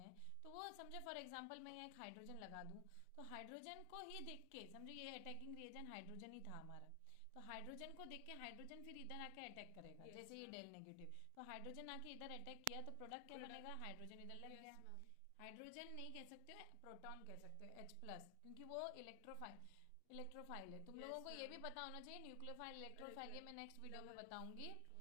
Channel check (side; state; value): both; different; correlation 0.00